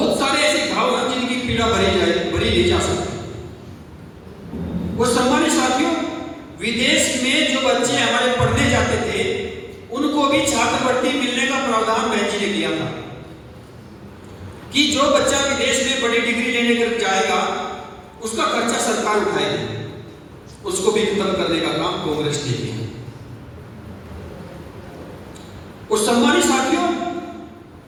सारे ऐसे घाव हैं जिनकी पीड़ा भरी नहीं जा सकती। और सम्मानित साथियों, विदेश में जो बच्चे हमारे पढ़ने जाते थे, उनको भी छात्रवृत्ति मिलने का प्रावधान बहन जी ने किया था कि जो बच्चा विदेश में बड़ी डिग्री लेने कर जाएगा, उसका खर्चा सरकार उठाएगी। उसको भी खत्म करने का काम कांग्रेस ने किया। और सम्मानित साथियों,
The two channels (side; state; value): both; identical; correlation 1.00